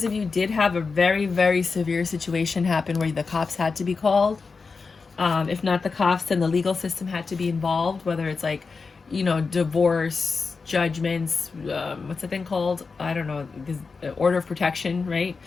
of you did have a very, very severe situation happen where the cops had to be called. If not the cops, then the legal system had to be involved, whether it's like, you know, divorce, judgments, what's the thing called? I don't know, order of protection, right?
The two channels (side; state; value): right; quieter; 4.7 dB